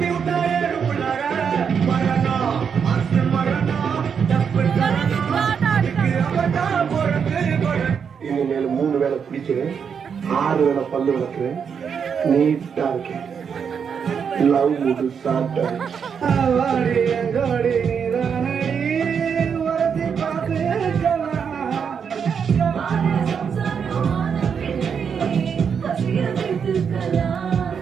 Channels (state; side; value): quieter; left; 6.9 dB